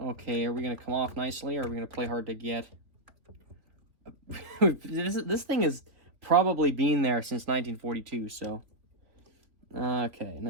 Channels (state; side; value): late; left; 3.3 ms